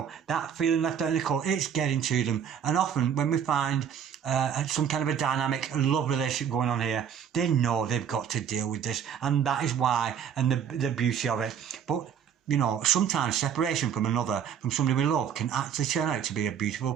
that feeling left out in the cold, it's getting to them. And often when we find some kind of a dynamic love relationship going on here, they know they've got to deal with this, and that is why, and the beauty of it. But, you know, sometimes separation from another, from somebody we love, can actually turn out to be a beautiful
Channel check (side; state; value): left; quieter; 8.2 dB